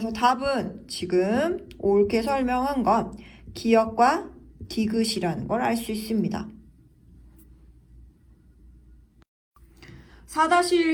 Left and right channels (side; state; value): both; identical; correlation 1.00